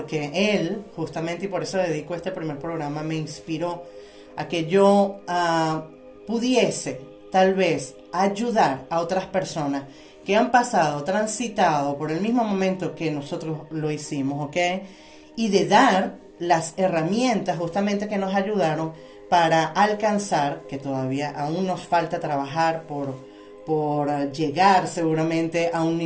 él, justamente, y por eso dedico este primer programa, me inspiró a que yo pudiese tal vez ayudar a otras personas que han pasado, transitado por el mismo momento que nosotros lo hicimos, ¿ok? Y de dar las herramientas justamente que nos ayudaron para alcanzar, que todavía aún nos falta trabajar por llegar seguramente a un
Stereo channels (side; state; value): both; identical; correlation 1.00